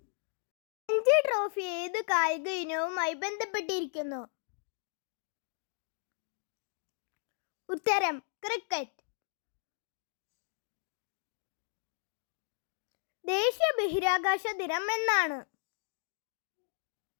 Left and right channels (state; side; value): silent; right; digital silence